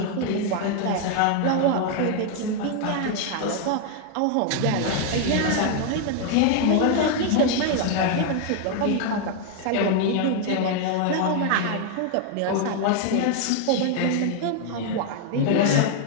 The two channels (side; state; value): both; different; correlation 0.00